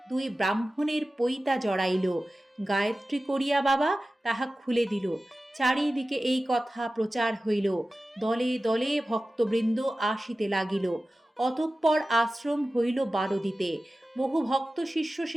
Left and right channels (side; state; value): both; normal; correlation 0.95